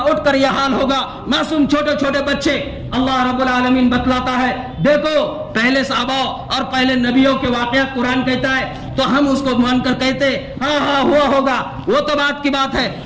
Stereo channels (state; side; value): identical; both; correlation 1.00